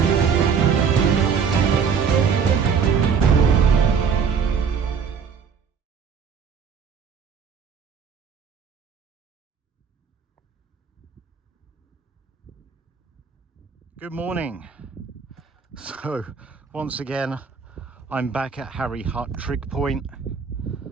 Good morning. So once again I'm back at Harry Hut Trig Point.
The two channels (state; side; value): quieter; left; 6.4 dB